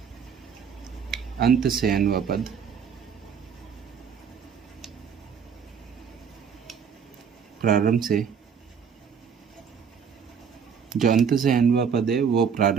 अंत से n वा पद प्रारंभ से, जो अंत से n वा पद है वो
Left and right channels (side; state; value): left; quieter; 7.0 dB